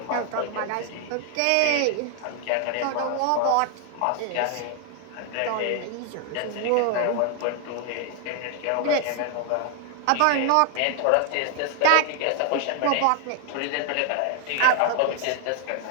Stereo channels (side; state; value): both; different; correlation 0.00